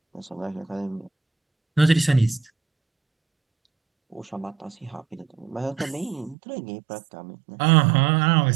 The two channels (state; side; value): drops out; left; at 6.4 s